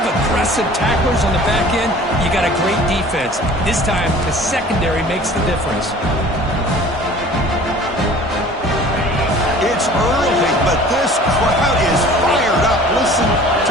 aggressive tacklers on the back end, you got a great defense. This time, the secondary makes the difference. It's early, but this crowd is fired up. Listen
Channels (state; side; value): normal; both; correlation 0.47